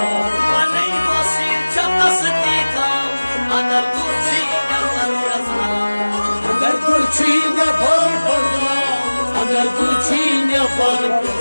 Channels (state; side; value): inverted; both; correlation -1.00